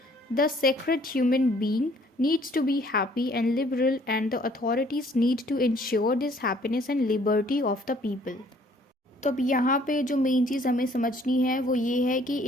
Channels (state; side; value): normal; both; correlation 0.60